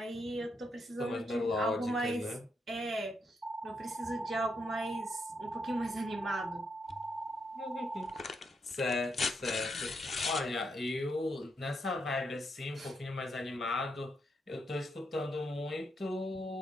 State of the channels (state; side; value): normal; both; correlation 0.80